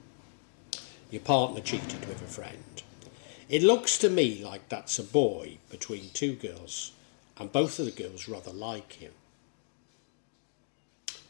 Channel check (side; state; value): right; silent; digital silence